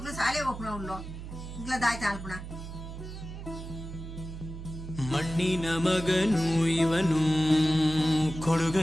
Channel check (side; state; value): right; noise; hum, 10 dB below the sound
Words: సాలే ఓపెన్ ఉల్లో ఇంట్లో దాయి తాల్పున ಮಣ್ಣಿನ ಮಗನು ಇವನು